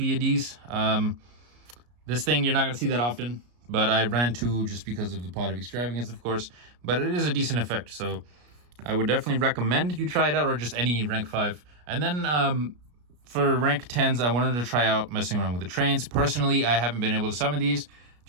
This thing you're not going to see that often, but I ran 2 just because of the Pot of Extravagance, of course, but it is a decent effect, so I would definitely recommend you try it out, or just any rank 5. And then for rank 10s, I wanted to try out messing around with the trains. Personally, I haven't been able to summon these,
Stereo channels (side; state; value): left; late; 33 ms